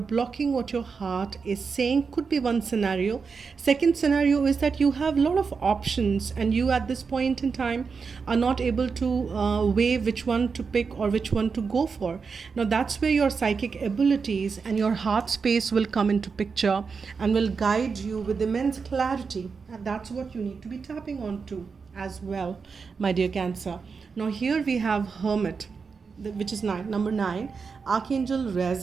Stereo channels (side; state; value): left; quieter; 5.3 dB